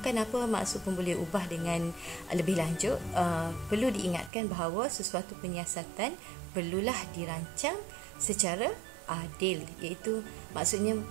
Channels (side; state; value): left; drops out; at 4.3 s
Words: apa maksud pemboleh ubah dengan lebih lanjut, perlu diingatkan bahawa sesuatu penyiasatan perlulah dirancang secara adil, iaitu maksudnya